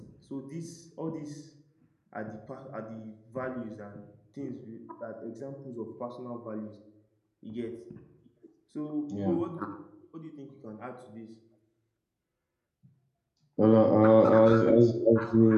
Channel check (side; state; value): both; identical; correlation 1.00